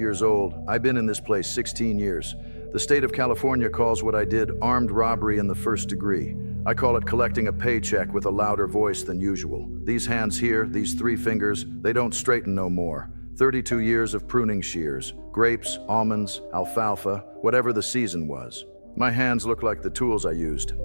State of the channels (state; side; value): inverted; both; correlation -1.00